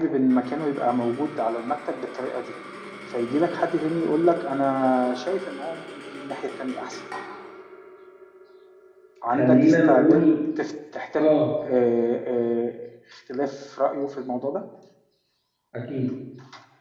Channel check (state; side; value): identical; both; correlation 1.00